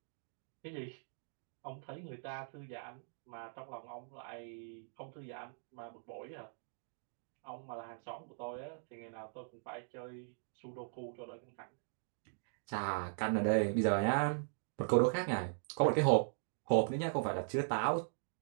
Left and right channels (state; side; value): silent; left; digital silence